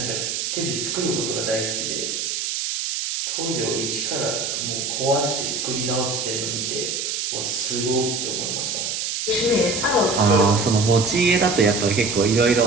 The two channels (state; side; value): noise; right; hiss, 2 dB below the sound